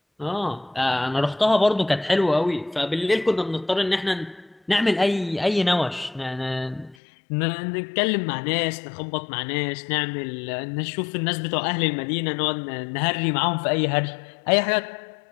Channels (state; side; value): drops out; right; at 7.0 s